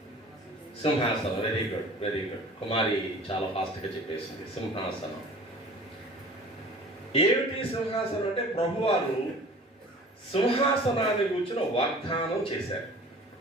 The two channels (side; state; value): both; normal; correlation 0.45